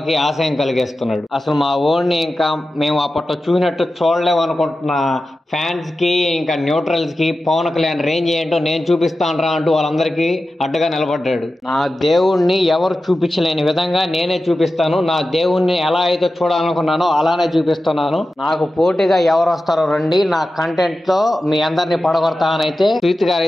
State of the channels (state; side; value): normal; both; correlation 0.93